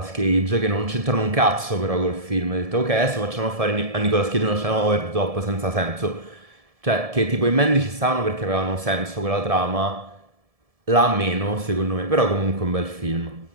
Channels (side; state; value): left; late; 1.7 ms